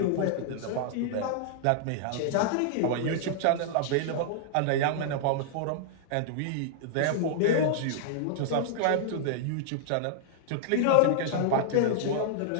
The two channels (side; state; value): both; different; correlation -0.01